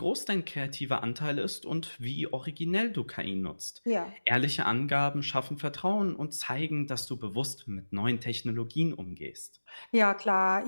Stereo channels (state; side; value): inverted; both; correlation -1.00